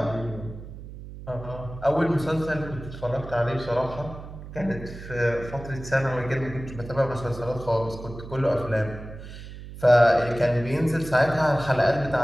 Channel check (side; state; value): right; noise; hum, 13 dB below the sound